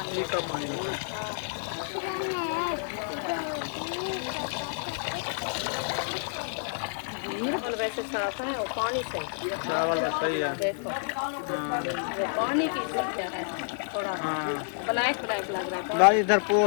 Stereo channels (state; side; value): silent; right; digital silence